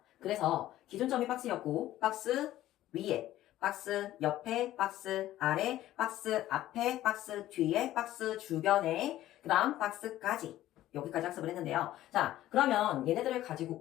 그래서 기준점이 박스였고, 박스 위에, 박스 옆에, 박스 아래, 박스 앞에, 박스 뒤에, 박스 주변에, 그 다음 박스까지. 여기까지 학습을 했는데요. 자, 그러면 얘네들을 가지고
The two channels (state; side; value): quieter; right; 14.2 dB